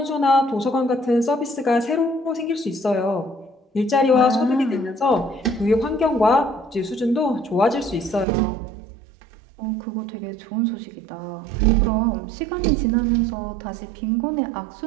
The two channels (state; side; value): drops out; left; at 8.2 s